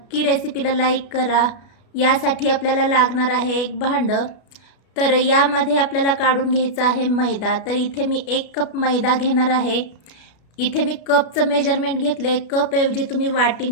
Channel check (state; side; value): late; right; 33 ms